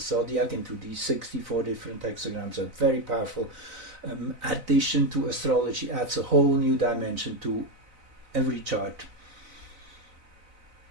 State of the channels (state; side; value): late; left; 4.0 ms